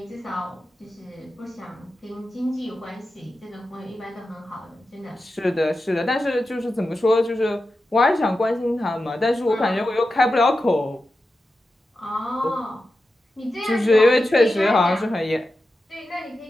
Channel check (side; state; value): both; normal; correlation 0.91